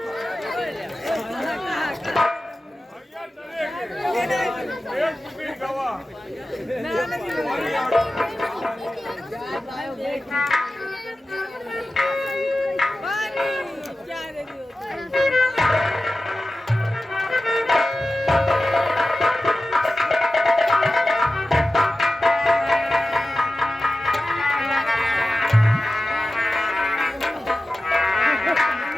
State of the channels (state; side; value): normal; both; correlation 0.95